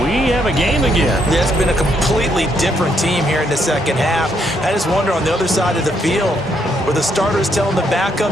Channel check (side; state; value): both; normal; correlation 0.74